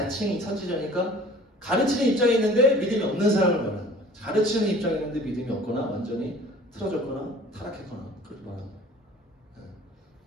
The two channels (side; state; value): both; normal; correlation 0.48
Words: 선지자니까 가르치는 입장에 있는데 믿음이 없는 사람을 말하는 거예요. 가르치는 입장에 있는데 믿음이 없거나 완전히 틀어졌거나 타락했거나 그렇게 말하는 거예요.